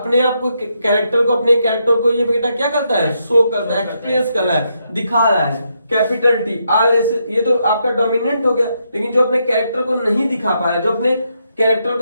आप को कैरेक्टर को अपने कैरेक्टर को ये बेटा क्या करता है, शो करता है, एक्सप्रेस कर रहा है, दिखा रहा है। कैपिटल टी आर एस, ये तो आपका डोमिनेंट हो गया। लेकिन जो अपने कैरेक्टर को नहीं दिखा पा रहा है, जो अपने कैरेक्टर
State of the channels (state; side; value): inverted; both; correlation -0.79